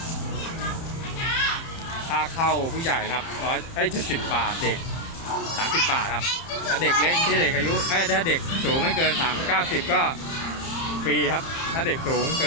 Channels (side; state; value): right; late; 30 ms